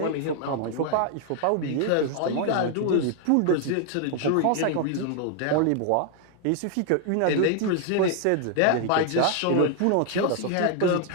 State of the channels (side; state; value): both; different; correlation 0.00